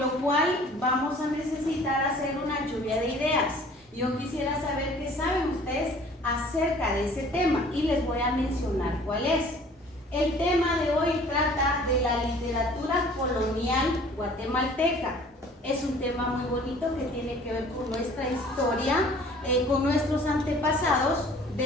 cual vamos a necesitar hacer una lluvia de ideas. Yo quisiera saber qué saben ustedes acerca de ese tema y les voy a mencionar cuál es. El tema de hoy trata de la literatura colonial guatemalteca. Es un tema muy bonito que tiene que ver con nuestra historia, con nuestros antepasados,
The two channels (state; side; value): normal; both; correlation 0.51